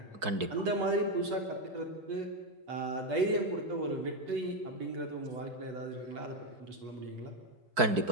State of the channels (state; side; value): late; left; 4.6 ms